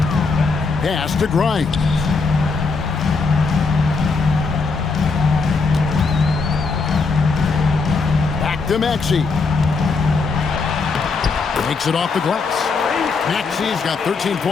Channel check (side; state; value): right; quieter; 4.5 dB